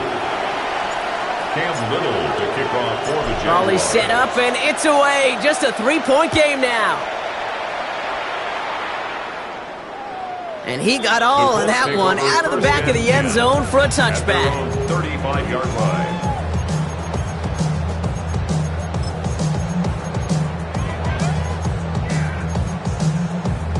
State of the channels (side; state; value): both; identical; correlation 1.00